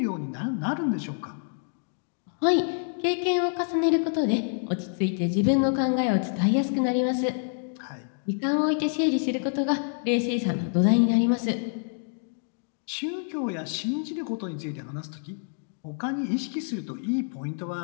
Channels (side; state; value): right; silent; 60 dB below the other